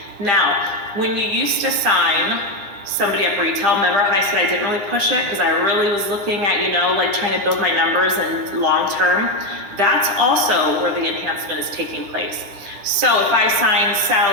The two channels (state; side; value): late; left; 10 ms